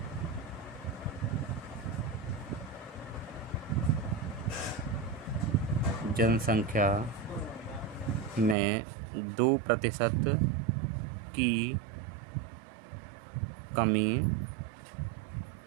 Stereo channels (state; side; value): drops out; left; at 8.6 s